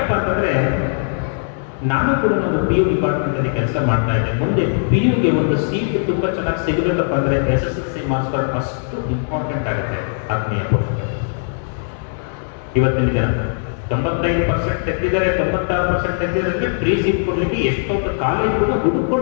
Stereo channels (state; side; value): silent; right; 66 dB below the other